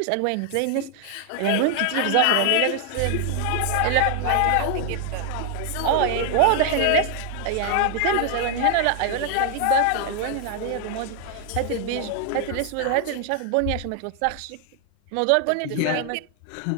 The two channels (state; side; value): different; both; correlation 0.00